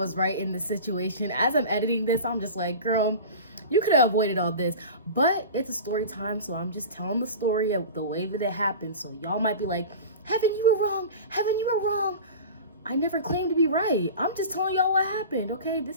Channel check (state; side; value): inverted; both; correlation -0.33